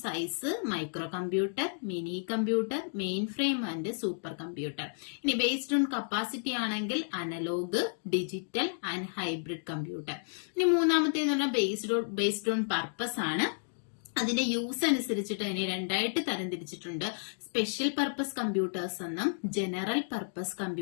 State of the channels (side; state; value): right; silent; digital silence